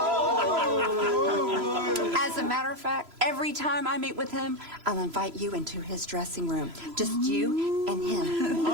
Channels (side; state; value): left; late; 3.0 ms